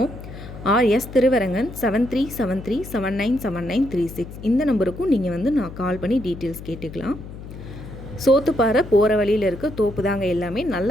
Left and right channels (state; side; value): noise; left; hum, 13 dB below the sound